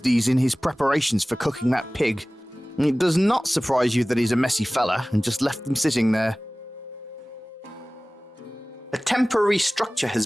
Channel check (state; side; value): normal; both; correlation 0.98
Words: these in his preparations for cooking that pig. It does not surprise you that he's a messy fella and just left them sitting there. A temporary structure